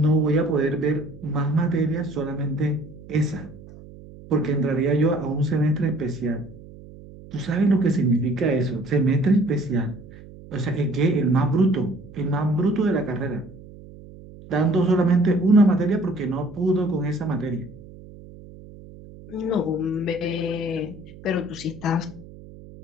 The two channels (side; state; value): right; noise; hum, 18 dB below the sound